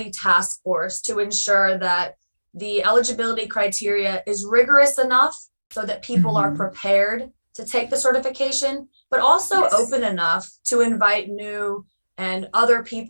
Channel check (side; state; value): both; inverted; correlation -1.00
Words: task force to ensure that the eligibility criteria is rigorous enough so that people are prepared to take the certification, but also open enough to invite new and other